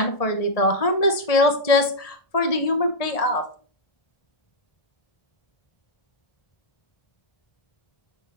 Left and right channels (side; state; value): right; late; 1.7 ms